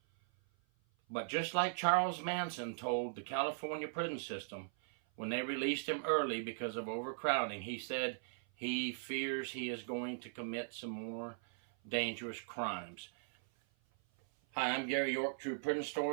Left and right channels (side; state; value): left; silent; 52 dB below the other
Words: But just like Charles Manson told the California prison system when they released him early because of overcrowding, he said he fears he is going to commit some more dangerous crimes. Hi, I'm Gary York, True Prison